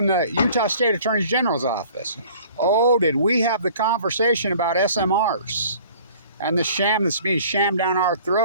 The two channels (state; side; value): inverted; both; correlation -0.50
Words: the Utah State Attorney General's office. Oh, did we have the conversation about SMRs and the sham that's being shammed down our